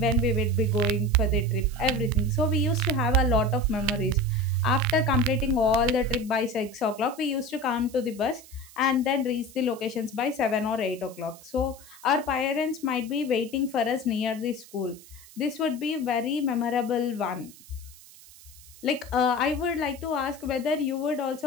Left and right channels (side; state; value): right; noise; hiss, 21 dB below the sound